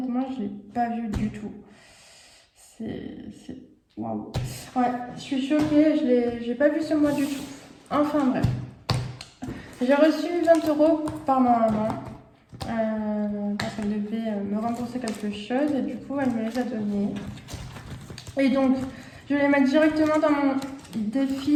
je l'ai pas vu du tout. C'est, waouh. Ouais, je suis choquée. J'ai pas vu ce mois du tout. Enfin bref, j'ai reçu 20 euros par ma maman parce qu'elle devait me rembourser quelque chose et du coup, elle me les a donnés. Et donc, je vais les mettre directement dans mon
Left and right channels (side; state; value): both; identical; correlation 1.00